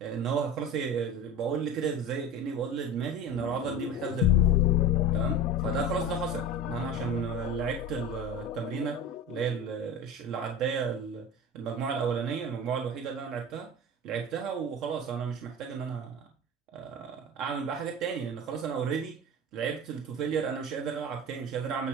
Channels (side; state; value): both; normal; correlation 0.30